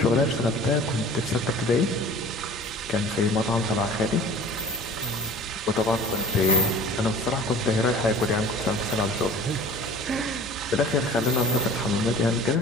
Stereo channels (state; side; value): normal; both; correlation 0.44